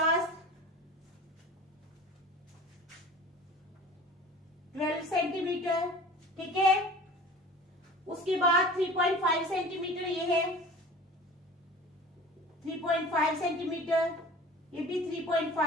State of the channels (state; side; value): normal; both; correlation 0.41